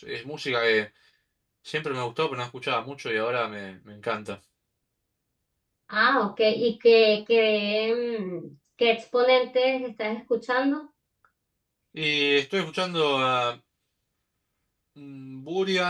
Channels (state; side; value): identical; both; correlation 1.00